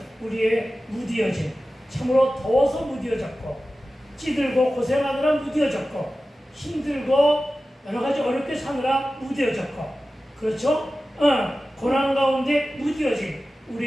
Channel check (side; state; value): both; normal; correlation 0.95